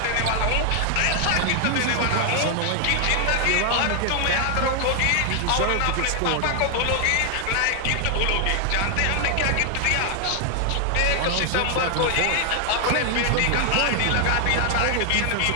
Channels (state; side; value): different; both; correlation 0.00